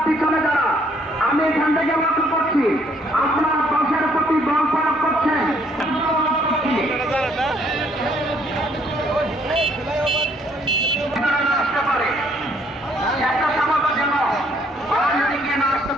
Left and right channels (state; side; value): normal; both; correlation 0.65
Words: পিছনে যারা, আমি এখান থেকে লক্ষ্য করছি আপনার দশের প্রতি দল প্রয়োগ করছেন। আসতে পারে একটা সমাবেশ যেন গিয়ে না আসতে